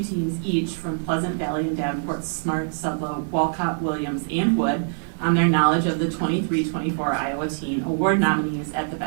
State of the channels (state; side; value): silent; left; digital silence